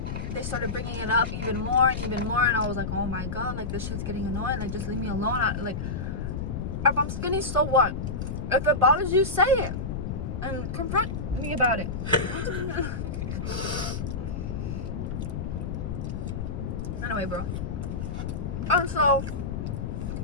they started bringing it up even more, and I was like, oh my god, like this shit's getting annoying, like just leave me alone. Like, if I'm skinny, so what? If it bothers you, say it and confront me about it. Anyway, bro. So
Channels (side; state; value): left; noise; rumble, 4 dB below the sound